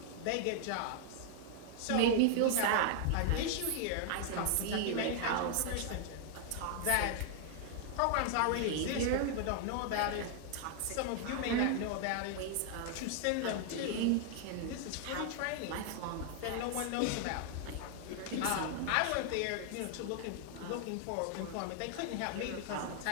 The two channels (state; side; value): different; both; correlation 0.00